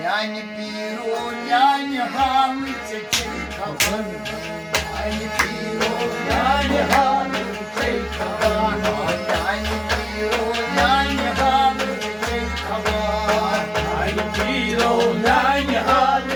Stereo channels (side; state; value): both; identical; correlation 1.00